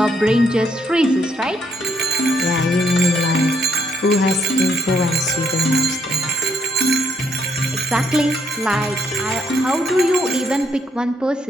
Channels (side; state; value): both; normal; correlation 0.73